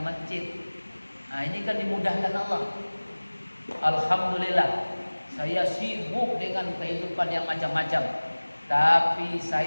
masjid. Nah, ini kan dimudahkan Allah. Alhamdulillah, saya sibuk dengan kehidupan yang macam-macam, tapi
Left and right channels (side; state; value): both; inverted; correlation -1.00